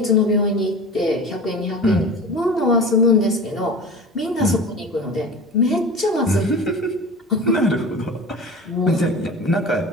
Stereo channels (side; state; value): both; normal; correlation 0.35